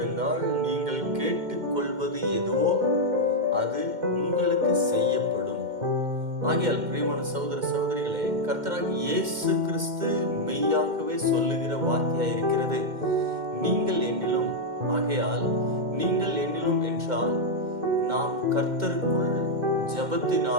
நீங்கள் கேட்டுக்கொள்வது எதுவோ அது உங்களுக்கு செய்யப்படும். ஆகையால் பிரியமான சகோதர சகோதரிகளே, கர்த்தராகிய இயேசு கிறிஸ்து மெய்யாகவே சொல்லுகிற வார்த்தையாய் இருக்கிறது. நீங்கள் என்னிலும். ஆகையால் நீங்கள் என்னிலும் என்றால் நாம் கர்த்தருக்குள்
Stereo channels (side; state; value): left; late; 2.1 ms